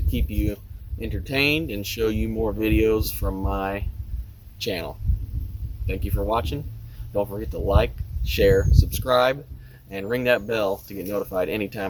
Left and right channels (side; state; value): both; identical; correlation 1.00